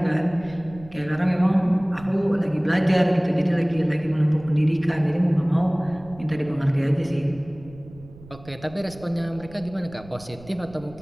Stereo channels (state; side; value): noise; right; rumble, 20 dB below the sound